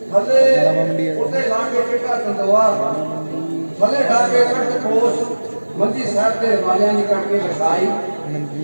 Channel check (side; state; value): both; inverted; correlation -1.00